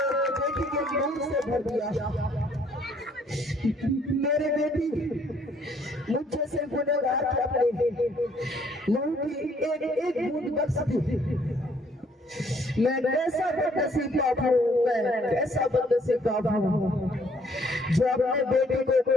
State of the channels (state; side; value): normal; both; correlation 0.64